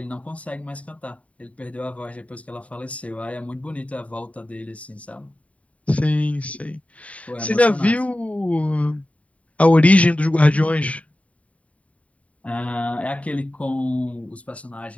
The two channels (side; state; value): right; late; 0.067 ms